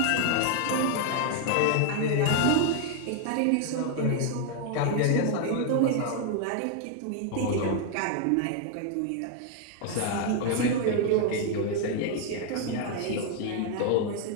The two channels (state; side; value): different; both; correlation 0.00